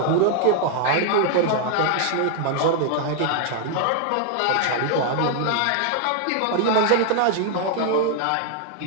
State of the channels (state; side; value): different; both; correlation 0.00